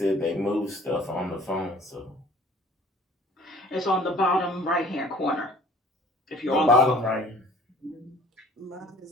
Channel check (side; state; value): both; normal; correlation 0.51